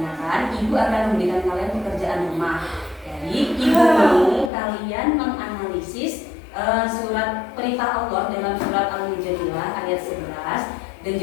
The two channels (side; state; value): right; drops out; at 4.5 s